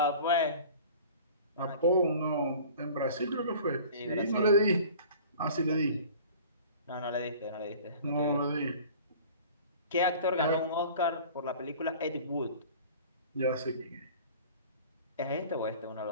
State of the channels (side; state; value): both; inverted; correlation -0.44